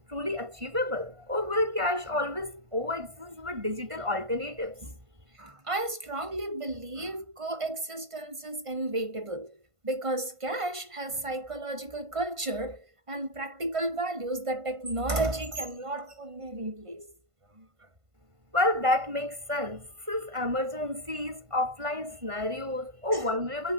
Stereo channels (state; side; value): late; left; 1.5 ms